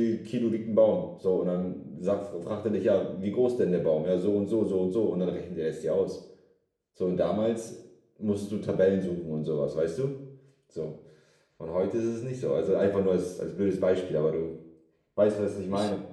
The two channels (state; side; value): identical; both; correlation 1.00